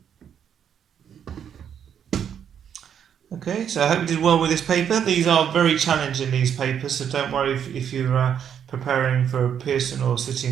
Okay, so I hope you did well with this paper. These are very challenging, these papers, so don't worry if you're preparing for Pearson or City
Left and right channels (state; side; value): quieter; left; 8.5 dB